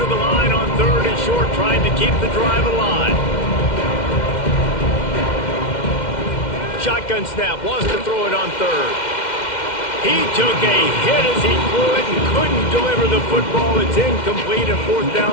to the line on 3rd and short, trying to keep the drive alive. Shotgun snap, wants to throw it on 3rd. He took a hit as he threw it and couldn't deliver the football. It's incomplete and fourth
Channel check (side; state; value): right; late; 2.1 ms